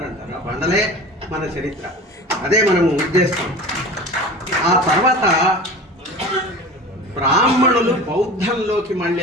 ఆ బండలే మన చరిత్ర, అదే మనము ఉద్దేశం. ఆ తర్వాత బ్రాహ్మణులు బౌద్ధంలోకి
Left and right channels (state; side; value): normal; both; correlation 0.36